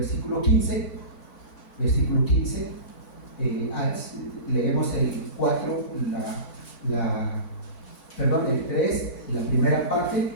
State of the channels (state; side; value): late; right; 3.5 ms